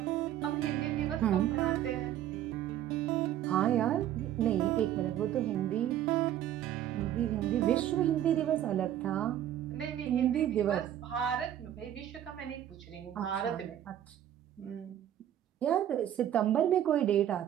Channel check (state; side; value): quieter; left; 11.4 dB